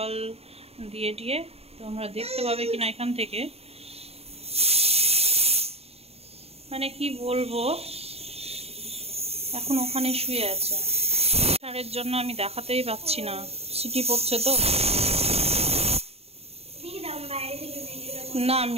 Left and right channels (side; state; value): left; late; 0.29 ms